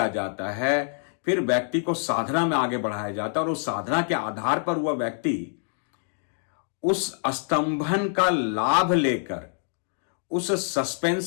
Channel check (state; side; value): silent; right; digital silence